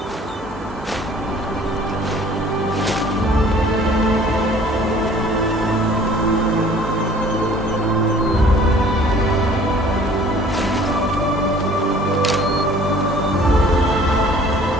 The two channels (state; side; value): normal; both; correlation 0.52